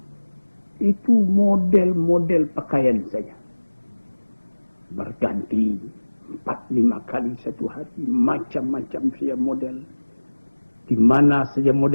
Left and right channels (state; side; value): inverted; both; correlation -1.00